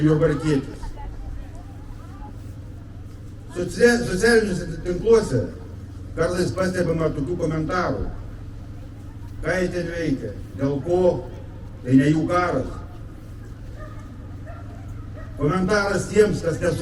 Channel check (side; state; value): both; identical; correlation 1.00